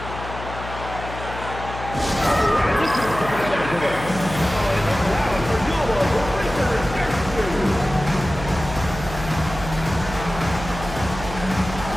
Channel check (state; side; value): noise; left; hum, 10 dB below the sound